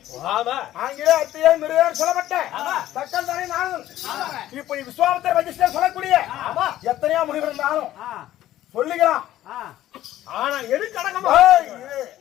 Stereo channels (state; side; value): quieter; right; 13.6 dB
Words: ஆமா ஆங்கில அத்தியே மிருகர் சொல்லப்பட்ட தக்கல் தானே நானும் இப்படி விஸ்வாமித்திர வசிஷ்டர் சொல்லக்கூடிய எத்தனையோ முனிவர் இருந்தாலும் சொல்லிக்கலாம். ஆனா எதுக்கு அடக்கமா